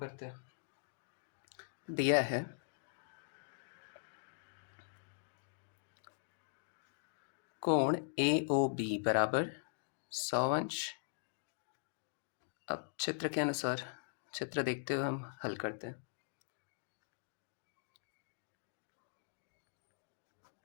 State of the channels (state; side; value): silent; right; digital silence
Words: हैं। दिया है कोण AOB बराबर 100 अंश। अब चित्र के अनुसार चित्र देखते हुए हम हल करते हैं।